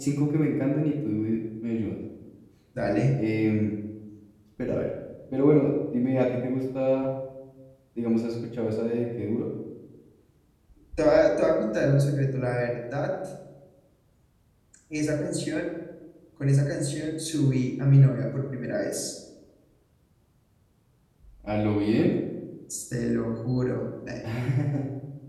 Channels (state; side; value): identical; both; correlation 1.00